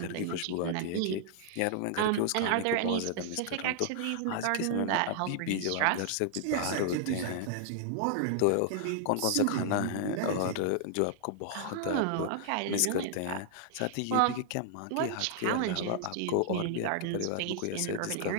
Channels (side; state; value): both; different; correlation -0.01